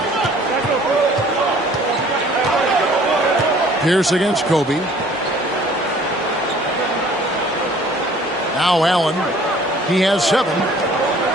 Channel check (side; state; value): both; normal; correlation 0.54